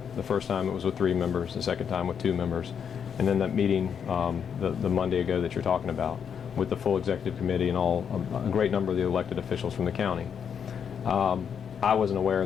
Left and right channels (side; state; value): right; quieter; 7.5 dB